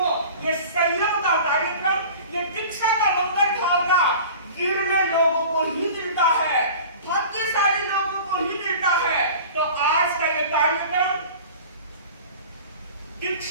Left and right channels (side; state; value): both; inverted; correlation -0.40